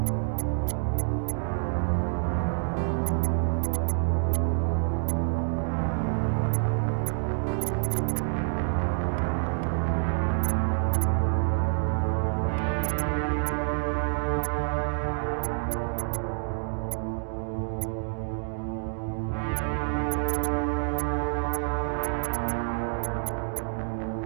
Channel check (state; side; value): silent; left; 60 dB below the other